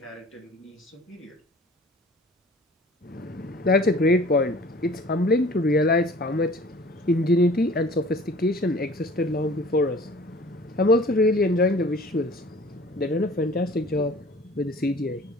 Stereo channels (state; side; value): normal; both; correlation 0.48